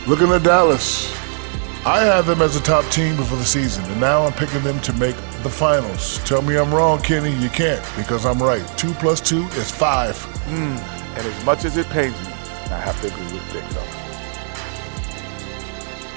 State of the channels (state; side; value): silent; left; 66 dB below the other